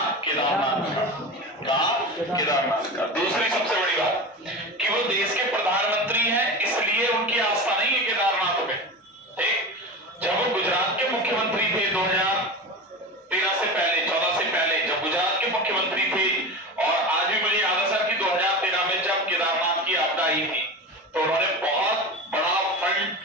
केदारनाथ का। कहां? केदारनाथ का। दूसरी सबसे बड़ी बात कि वो देश के प्रधानमंत्री हैं, इसलिए उनकी आस्था नहीं है केदारनाथ में। ठीक, जब वो गुजरात के मुख्यमंत्री थे 2013 से पहले, 14 से पहले, जब गुजरात के मुख्यमंत्री थे, और आज भी मुझे याद है सर कि 2013 में जब केदारनाथ की आपदा आई थी, तो उन्होंने बहुत बड़ा फंड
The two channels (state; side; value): normal; both; correlation 0.27